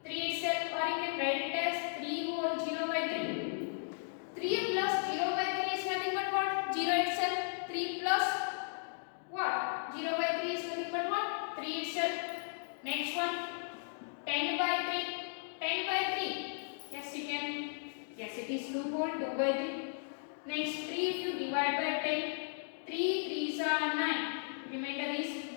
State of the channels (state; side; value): silent; right; digital silence